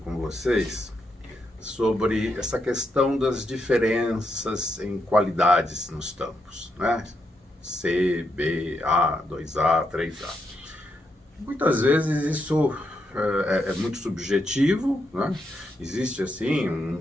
vocês sobre essa questão das diferenças em qualidades nos tampos, né? C, B, A, 2A, 3A. Muitas vezes isso é muito subjetivo, né? Existe assim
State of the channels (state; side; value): normal; both; correlation 0.81